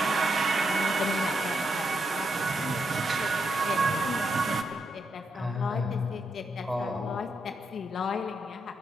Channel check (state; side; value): normal; both; correlation 0.81